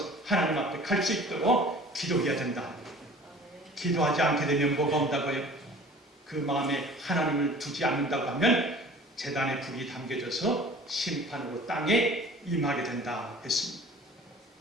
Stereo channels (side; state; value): both; normal; correlation 0.46